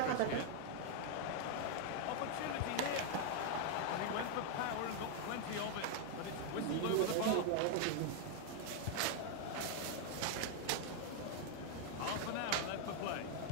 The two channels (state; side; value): different; both; correlation 0.00